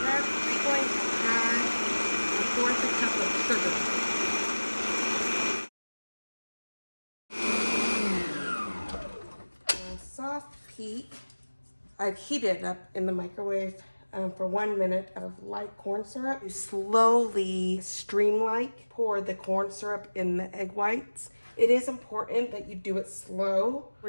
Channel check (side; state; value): both; inverted; correlation -1.00